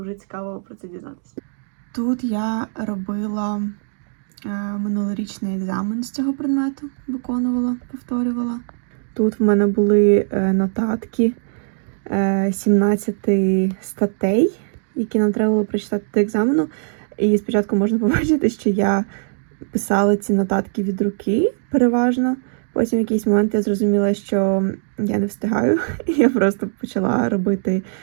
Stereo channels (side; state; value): left; silent; digital silence